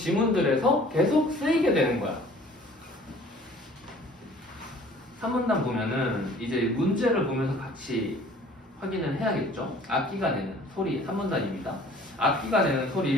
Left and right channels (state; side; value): normal; both; correlation 0.51